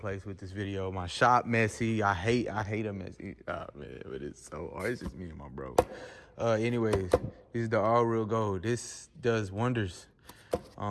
with this video. My shop messy. I hate a messy. Oh, man, but it's so hard. It's just me and my bro. Anyways, this is the all real gold. This does wonders.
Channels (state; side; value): identical; both; correlation 1.00